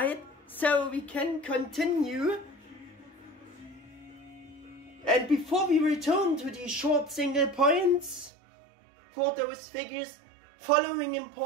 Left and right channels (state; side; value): drops out; left; at 8.3 s